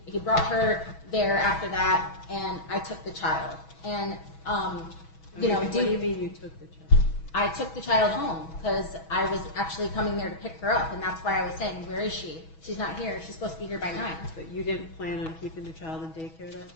brought her there after that, and I took the child. And, What do you mean you took the child? I took the child home because I was actually coming there to pick her up, and that's why I was saying, where is she? She's not here. She's supposed to be here by 9. But you didn't plan on keeping the child in daycare that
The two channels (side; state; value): right; late; 6.2 ms